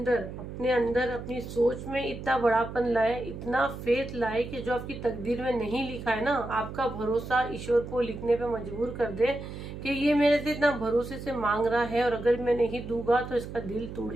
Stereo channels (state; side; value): noise; right; hum, 10 dB below the sound